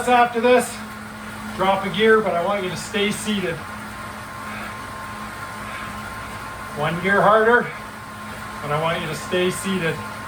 after this, drop a gear, but I want you to stay seated. One gear harder, but I want you to stay seated.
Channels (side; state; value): both; identical; correlation 1.00